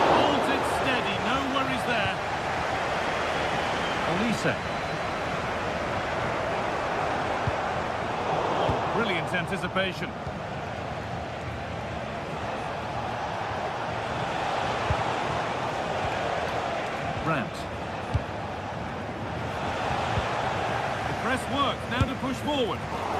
Holds it steady. No worries there. Olise. Oh, brilliant anticipation. Brandt. The press works, now to push forward.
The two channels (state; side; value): identical; both; correlation 1.00